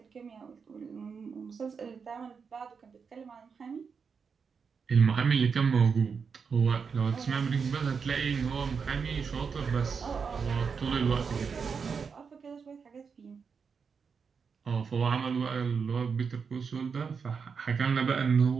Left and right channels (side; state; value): left; quieter; 5.8 dB